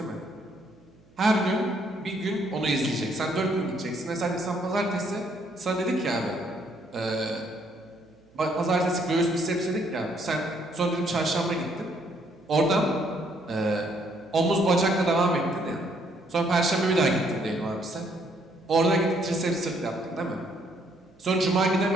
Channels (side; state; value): right; noise; hum, 29 dB below the sound